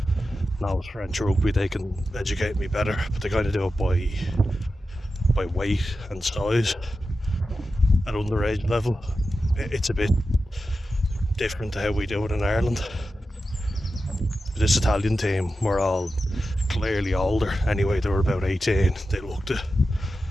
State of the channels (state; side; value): normal; both; correlation 0.91